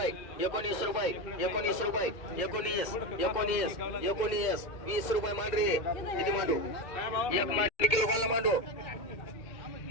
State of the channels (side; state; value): right; late; 2.2 ms